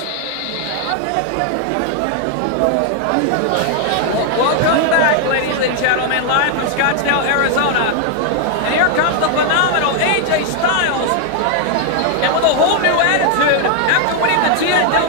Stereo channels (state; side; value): different; both; correlation 0.00